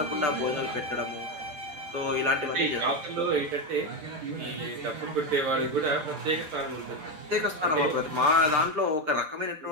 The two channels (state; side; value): late; left; 6.7 ms